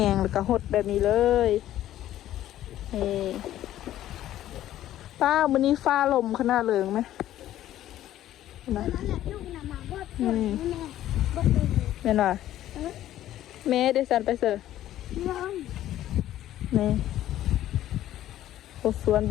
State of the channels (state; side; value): quieter; right; 13.0 dB